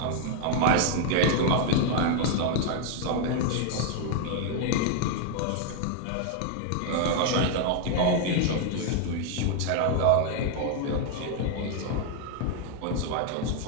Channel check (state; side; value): different; both; correlation 0.00